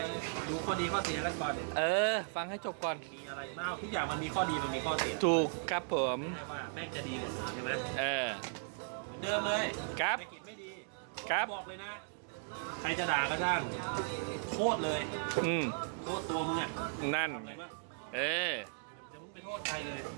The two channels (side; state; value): left; silent; digital silence